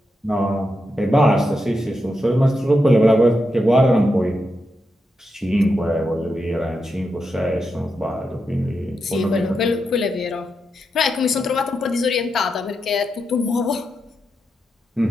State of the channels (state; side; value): normal; both; correlation 0.86